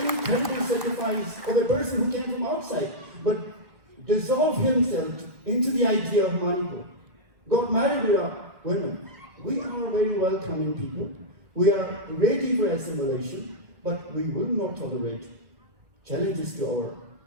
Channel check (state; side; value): late; left; 1.5 ms